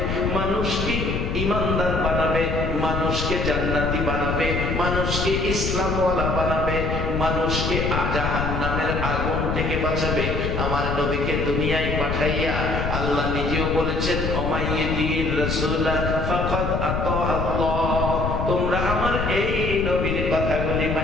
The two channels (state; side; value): noise; left; rumble, 2 dB below the sound